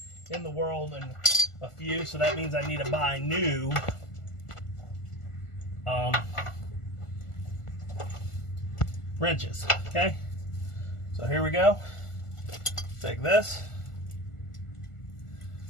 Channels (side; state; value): right; late; 1.4 ms